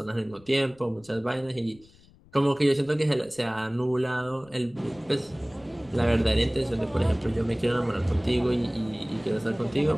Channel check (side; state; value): left; noise; rumble, 27 dB below the sound